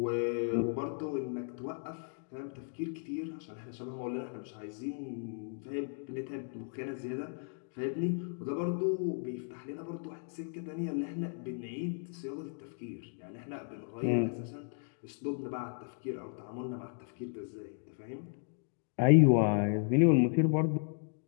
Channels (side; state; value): right; silent; 54 dB below the other